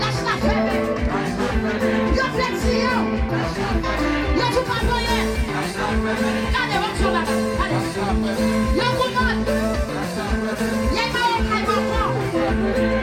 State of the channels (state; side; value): identical; both; correlation 1.00